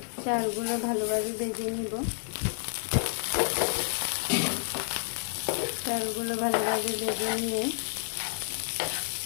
চালগুলো ভালোভাবে ভেজে নিব। চালগুলো ভালোভাবে ভেজে নিয়ে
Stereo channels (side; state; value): right; silent; digital silence